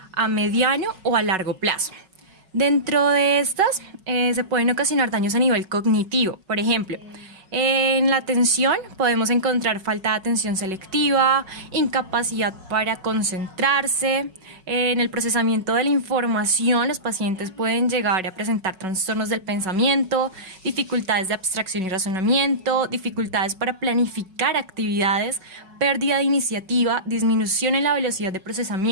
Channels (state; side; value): late; left; 5.4 ms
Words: a mediano o a largo plazo. Dentro de estas se pueden ocasionar daños a nivel cognitivo. Por ejemplo, en la atención podemos encontrar falta de atención selectiva, incapacidad para concentrarse. En el procesamiento de la información, los pacientes pueden llegar a presentar trastornos del pensamiento, dificultades de abstracción y razonamiento, dificultades para planificar actividades, pérdida de iniciativa, disminución en la velocidad de